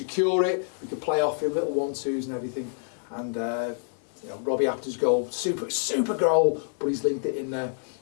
it, we could play off him, little 1-2s and everything. And 𝗬𝗢𝗨𝗣𝗣𝗢𝗧 goal, super goal, but he's linked it in there.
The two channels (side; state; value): right; silent; digital silence